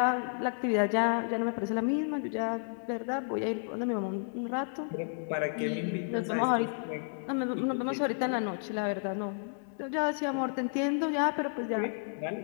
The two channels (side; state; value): right; silent; digital silence